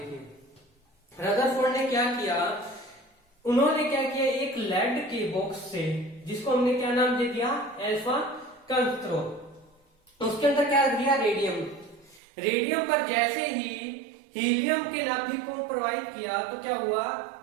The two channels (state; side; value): drops out; left; at 12.2 s